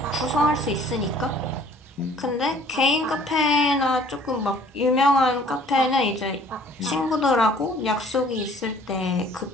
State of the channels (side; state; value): both; normal; correlation 0.55